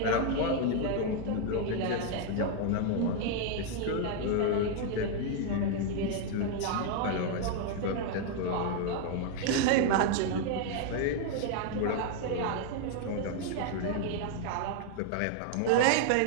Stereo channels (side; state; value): both; different; correlation 0.00